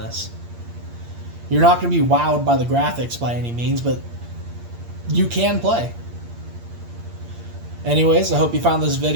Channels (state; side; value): late; left; 8.6 ms